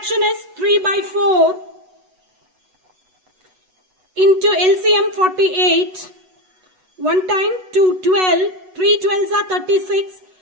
is 3 by 4 into LCM 48. 1 time 2 12. 3 12s are 36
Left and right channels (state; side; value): late; left; 8.1 ms